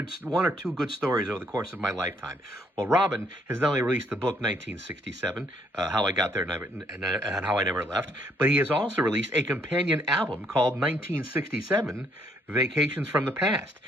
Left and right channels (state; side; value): normal; both; correlation 0.69